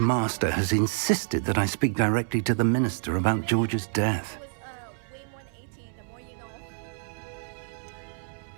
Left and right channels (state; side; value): silent; left; 59 dB below the other